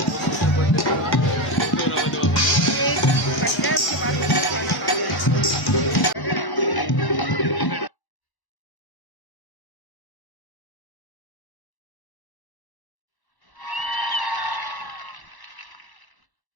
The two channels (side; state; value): right; late; 1.0 ms